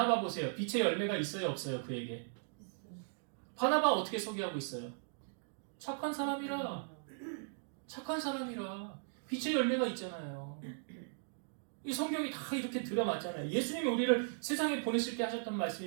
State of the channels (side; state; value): left; silent; digital silence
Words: 보세요. 빛의 열매가 있어요, 없어요? 그에게. 바나바 어떻게 소개하고 있어요? 착한 사람이라. 빛의 열매가 있잖아요. 이 성경이 다 이렇게 들어맞잖아요. 예수님이 우리를 세상에 보내실 때 하셨던